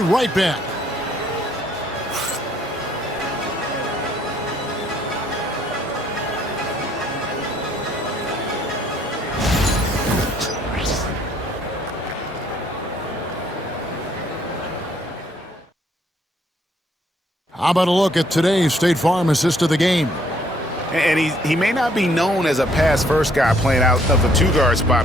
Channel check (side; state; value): both; normal; correlation 0.66